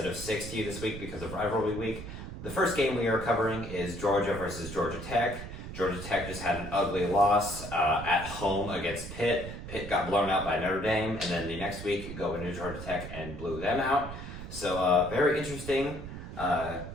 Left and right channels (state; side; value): noise; right; rumble, 9 dB below the sound